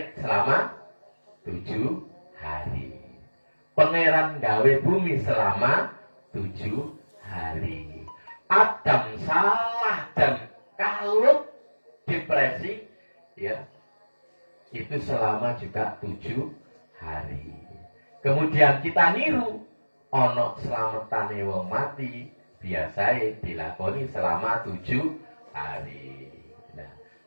selama 7 hari. Pangeran gawe bumi selama 7 hari. Adam salah dan kalut depresi, ya, itu selama juga 7 hari. Kemudian kita niru, ono selamatane wong mati, biasanya dilakoni selama 7 hari. Nah,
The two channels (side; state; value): both; inverted; correlation -1.00